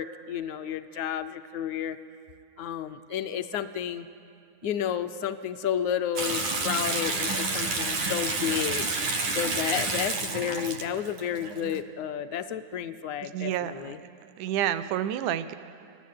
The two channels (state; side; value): late; left; 9.9 ms